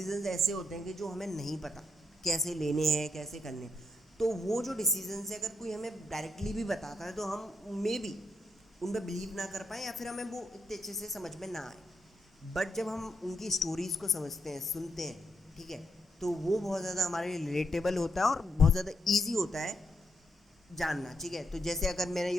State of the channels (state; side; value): normal; both; correlation 0.80